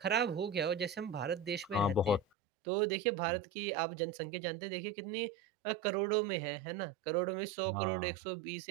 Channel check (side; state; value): left; drops out; at 2.2 s